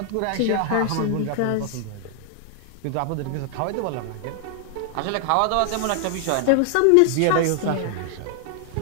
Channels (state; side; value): different; both; correlation 0.00